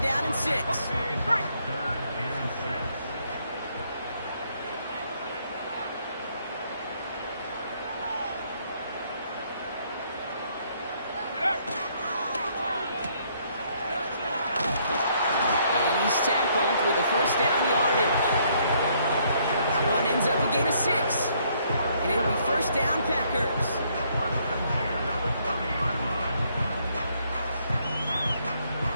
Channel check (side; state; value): both; inverted; correlation -0.68